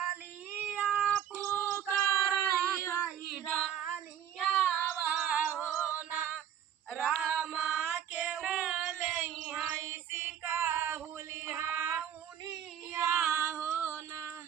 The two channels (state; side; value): quieter; left; 9.5 dB